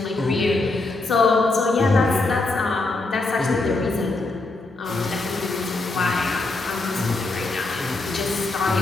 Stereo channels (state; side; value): quieter; right; 3.2 dB